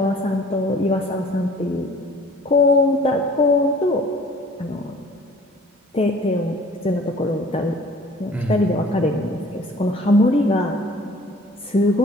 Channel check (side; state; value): both; normal; correlation 0.50